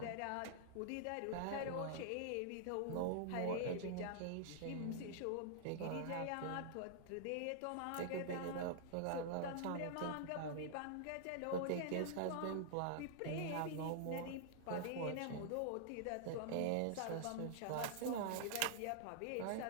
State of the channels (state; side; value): different; both; correlation -0.01